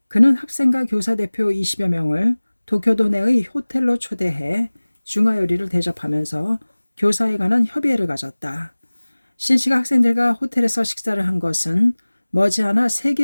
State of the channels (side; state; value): both; inverted; correlation -1.00